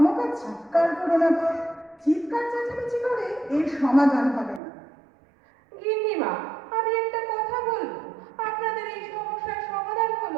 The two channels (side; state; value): left; drops out; at 4.6 s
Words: চিৎকার করো না তো। চিৎকার চেঁচামেচি করে এর সমাধান হবে না। গিন্নিমা, আমি একটা কথা বলবো। আপনাদের এই সমস্যার সমাধান